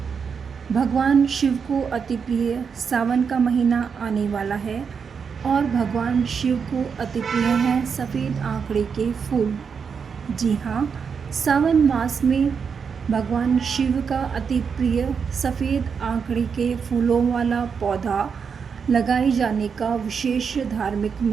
भगवान शिव को अति प्रिय सावन का महीना आने वाला है और भगवान शिव को अति प्रिय हैं सफ़ेद आंकड़े के फूल। जी हाँ, सावन मास में भगवान शिव का अति प्रिय सफ़ेद आंकड़े के फूलों वाला पौधा लगाए जाने का विशेष धार्मिक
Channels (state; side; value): quieter; left; 6.2 dB